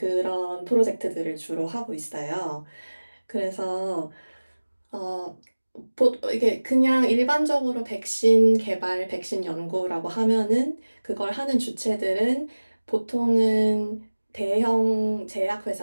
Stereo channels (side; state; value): both; inverted; correlation -1.00